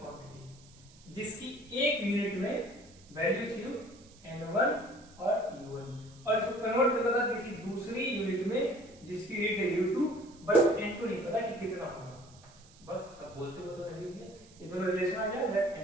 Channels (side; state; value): right; noise; hiss, 25 dB below the sound